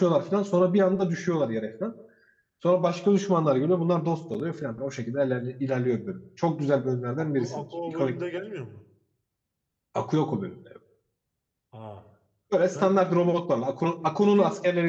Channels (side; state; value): both; identical; correlation 1.00